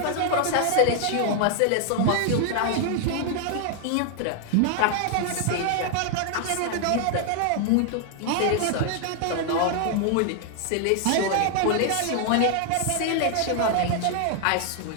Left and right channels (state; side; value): different; both; correlation 0.00